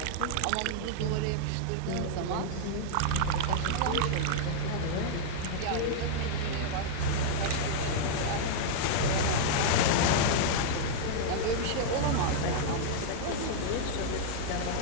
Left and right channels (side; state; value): both; different; correlation -0.01